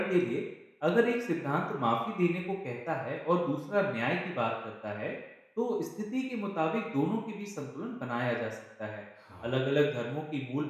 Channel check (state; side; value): identical; both; correlation 1.00